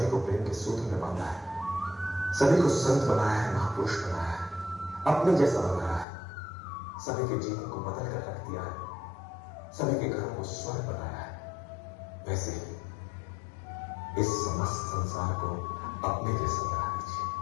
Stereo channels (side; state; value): right; drops out; at 6.1 s